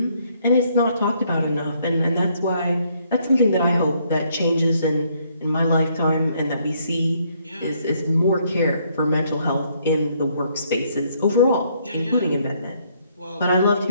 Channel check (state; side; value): inverted; both; correlation -0.69